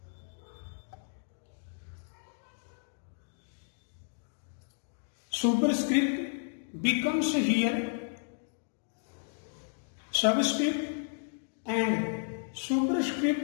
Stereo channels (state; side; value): silent; right; digital silence